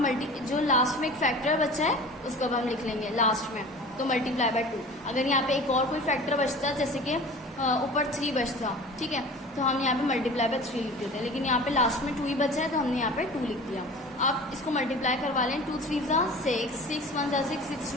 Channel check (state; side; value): normal; both; correlation 0.40